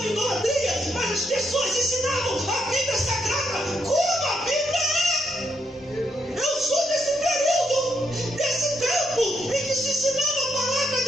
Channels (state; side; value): normal; both; correlation 0.78